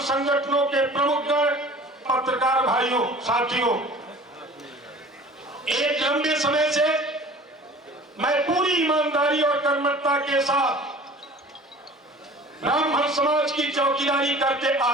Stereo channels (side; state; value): both; normal; correlation 0.44